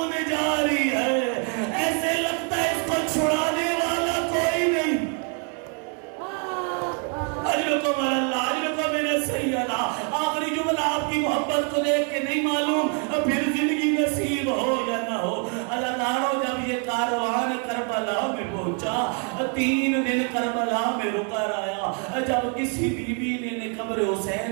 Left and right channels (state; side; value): quieter; left; 39.1 dB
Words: جاری ہے، ایسے لگتا ہے اس کو چھڑانے والا کوئی نہیں۔ اجرکم اللہ، اجرکم من السیدہ۔ آخری جملہ آپ کی محبت کو دیکھ کے نہیں معلوم پھر زندگی نصیب ہو یا نہ ہو۔ عزادارو جب یہ کاروان کربلا میں پہنچا، 3 دن کربلا میں رکا رہا، جب کسی بی بی نے قبر